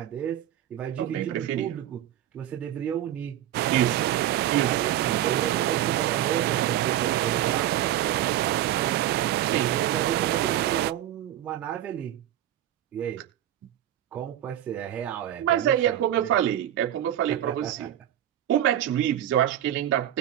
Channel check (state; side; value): quieter; left; 12.1 dB